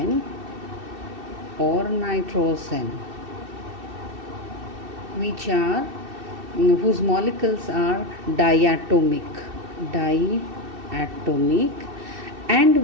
or nitrogen, which are whose molecules are diatomic, and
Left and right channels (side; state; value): left; late; 2.7 ms